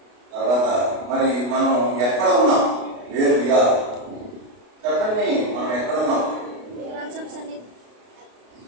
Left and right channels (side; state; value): left; late; 32 ms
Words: తర్వాత మరి మనం ఎక్కడ ఉన్నాం, వేర్ వి ఆర్, చెప్పండి మనం ఎక్కడ ఉన్నాం.